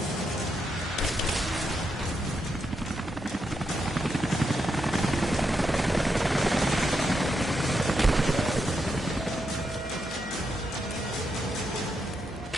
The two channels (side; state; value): both; normal; correlation 0.83